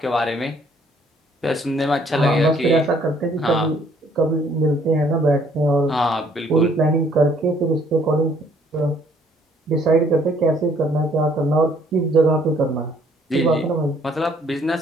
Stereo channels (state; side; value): normal; both; correlation 0.62